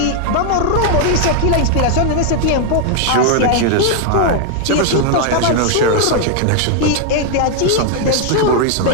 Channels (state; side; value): different; both; correlation 0.00